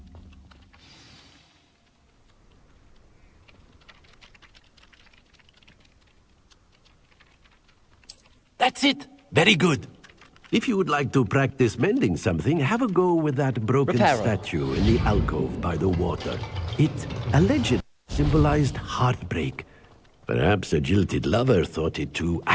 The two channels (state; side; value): identical; both; correlation 1.00